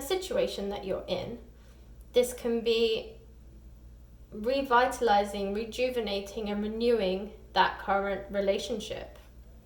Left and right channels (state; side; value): identical; both; correlation 1.00